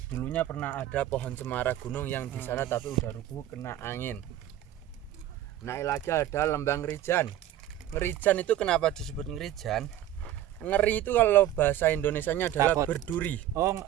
Dulunya pernah ada pohon cemara gunung yang di sana tapi udah rubuh kena angin. Naik lagi ada lembah Ngerijan. Ngerijan itu kenapa disebut Ngerijan? Ngeri itu kalau bahasa Indonesianya adalah berduri. Oh,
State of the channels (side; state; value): left; quieter; 12.4 dB